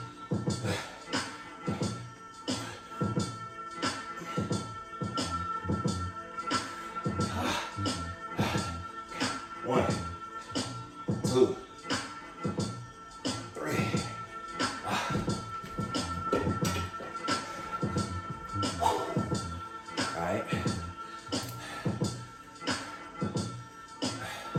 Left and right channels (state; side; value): identical; both; correlation 1.00